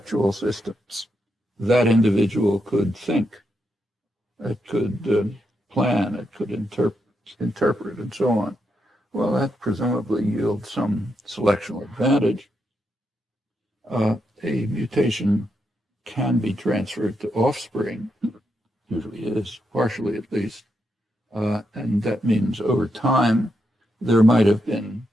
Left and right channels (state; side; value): normal; both; correlation 0.83